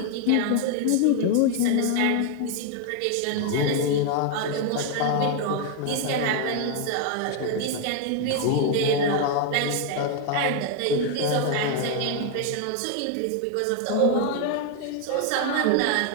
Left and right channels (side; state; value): both; different; correlation 0.00